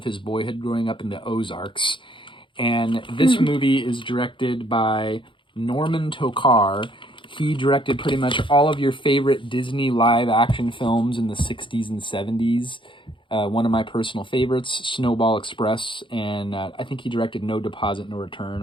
his boyhood growing up in the Ozarks. And this movie is directed by Norman Tokar. He directed pretty much all of your favorite Disney live-action films in the 60s and 70s. One of my personal favorites, Snowball Express, and I think he directed No Deposit, No Return,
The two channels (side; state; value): right; late; 0.24 ms